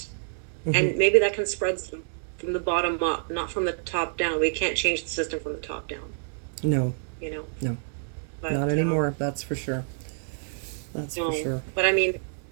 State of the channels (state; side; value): silent; left; digital silence